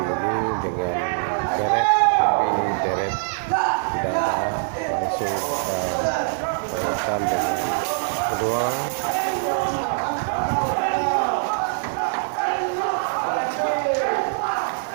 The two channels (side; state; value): left; silent; digital silence